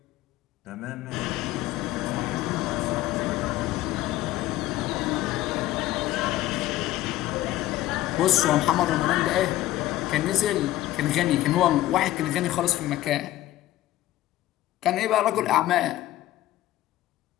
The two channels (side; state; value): right; quieter; 15.0 dB